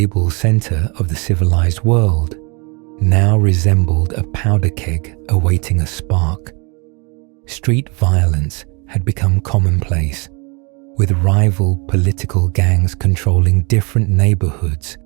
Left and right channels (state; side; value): quieter; left; 31.2 dB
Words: center of the civilized world, now resembled a powder keg awaiting a spark. Street violence had become commonplace, with rival political gangs controlling different neighborhoods